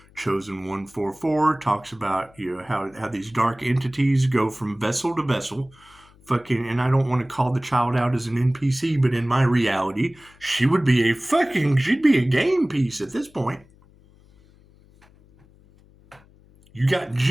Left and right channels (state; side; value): noise; left; hum, 28 dB below the sound